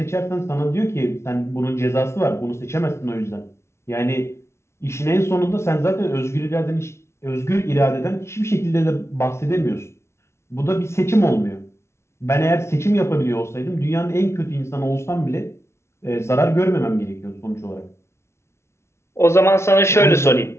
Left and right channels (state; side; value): late; right; 0.13 ms